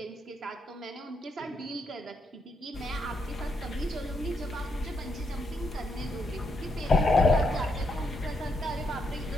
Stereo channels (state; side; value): normal; both; correlation 0.79